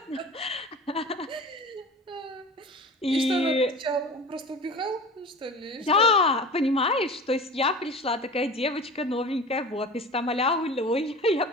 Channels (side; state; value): both; normal; correlation 0.36